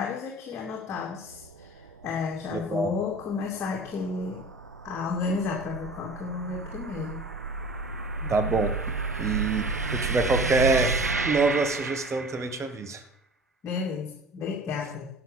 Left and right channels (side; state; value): both; normal; correlation 0.41